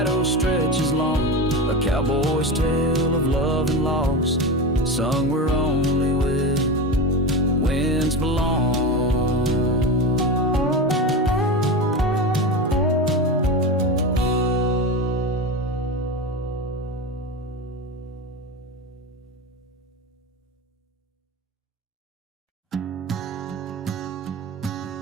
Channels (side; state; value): both; normal; correlation 0.22